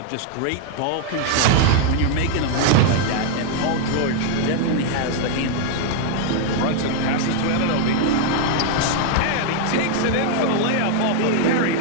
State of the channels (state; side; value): different; both; correlation 0.00